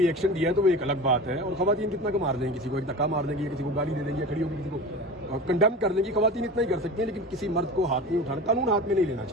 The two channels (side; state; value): both; normal; correlation 0.32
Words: एक्शन दिया है तो वो एक अलग बात है, और खवातीन कितना का मार देंगी, किसी को एक धक्का मार देंगी, या किसी को गाली दे देंगी, या खड़ी होकर किसी को कंडेम कर देंगी, खवातीन इतना ही कर सकती हैं, लेकिन किसी मर्द को हाथ नहीं उठाना, कानून हाथ में नहीं लेना